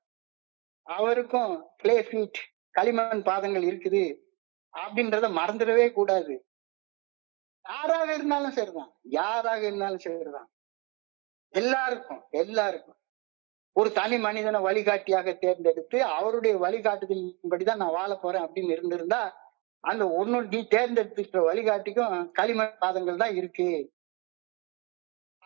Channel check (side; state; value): left; quieter; 29.2 dB